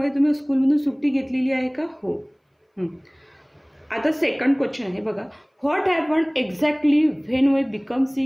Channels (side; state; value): both; identical; correlation 1.00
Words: तुम्ही स्कूलमधून सुट्टी घेतलेली आहे का? हो. आता सेकंड क्वेश्चन आहे. बघा, what happen exactly when we become